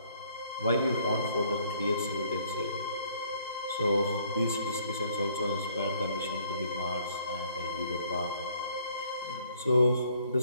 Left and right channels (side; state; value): both; inverted; correlation -0.63